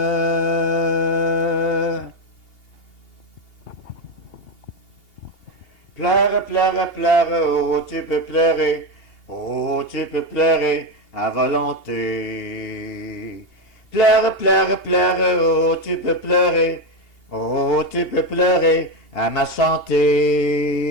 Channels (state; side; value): late; right; 2.8 ms